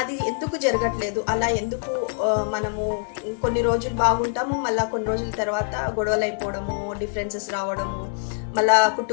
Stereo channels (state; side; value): silent; right; digital silence